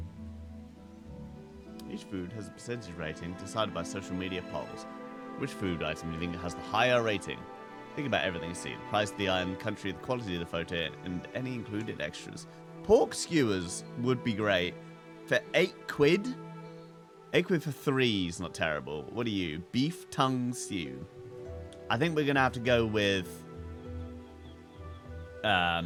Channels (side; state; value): both; identical; correlation 1.00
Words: Each food has a percentage rating decided by social media polls. Which food item do you think has the higher rating? Think about everything you see. The price of the item, country, the quality of the photo, and any included extras. Pork skewers would be great. For 8 quid? 8 quid for 3 is not terrible. What are you? Beef tongue stew. I think we're going to have to go with